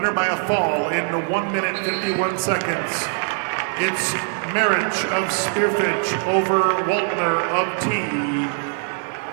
by a fall in 1 minute 51 seconds. It's Marich of Spearfish over Waltner of T.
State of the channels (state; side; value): silent; left; 57 dB below the other